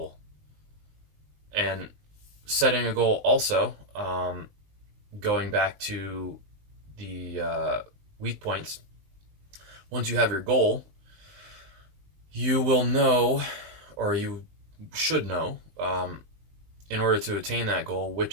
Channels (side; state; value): left; late; 20 ms